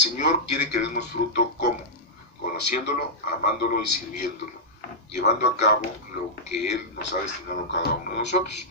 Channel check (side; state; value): both; normal; correlation -0.11